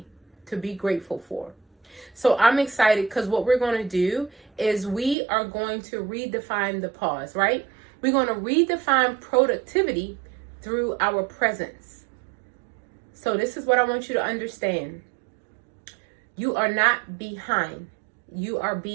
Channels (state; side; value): drops out; left; at 5.2 s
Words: to be grateful for. So I'm excited because what we're going to do is we are going to redefine the pause, right? We're going to redefine productivity through our presence. So this is what I want you to understand. You are not behind. You are